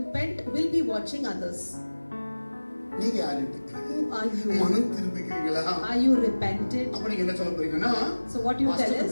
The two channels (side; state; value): both; inverted; correlation -1.00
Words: will be watching others. நீங்க யாரு? Who are you? மனம் திரும்பிக்கிறீங்களா? Are you repented? அப்ப நீங்க என்ன சொல்ல போறீங்கன்னா So what you tell is?